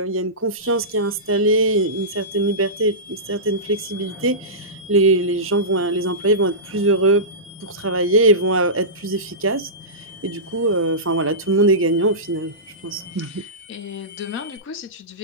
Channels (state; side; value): normal; both; correlation -0.19